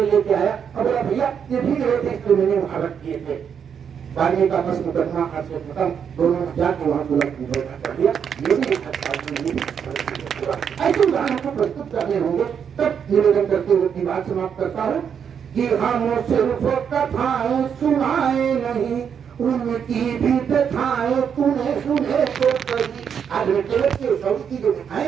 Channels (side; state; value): left; quieter; 7.6 dB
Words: लेके आया और बोला भैया ये भीग रहे थे इसलिए मैंने वहां रख दिए थे। बारहवीं का बस मुकदमा आज से खत्म, दोनों जाके वहां दुलक कर दिया। ये भी एक ऐसे उदाहरण को प्रस्तुत करने होंगे। तब निवेदन करते हुए अपनी बात समाप्त करता हूँ कि हम सिर्फ कथाएं सुनाए नहीं, उनकी भी व्यथाएं तूने सुने तो सही। आज केवल के सौर की जो